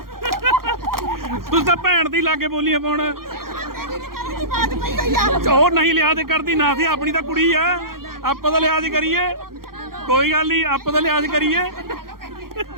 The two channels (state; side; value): late; left; 0.92 ms